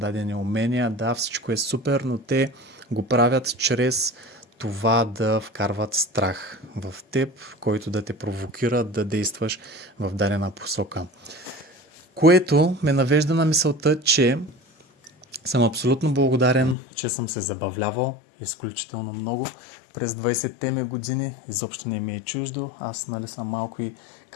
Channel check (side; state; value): right; drops out; at 16.8 s